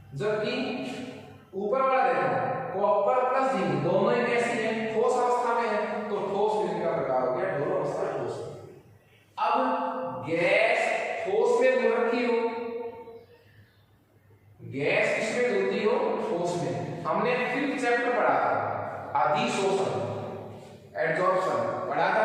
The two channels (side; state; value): both; identical; correlation 1.00